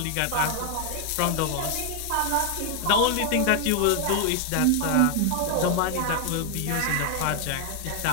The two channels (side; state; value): both; different; correlation 0.00